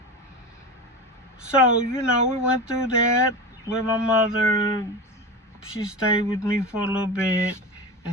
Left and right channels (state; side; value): normal; both; correlation 0.26